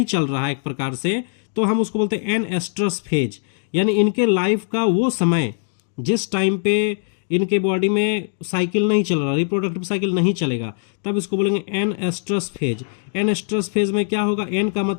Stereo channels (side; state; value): right; silent; 60 dB below the other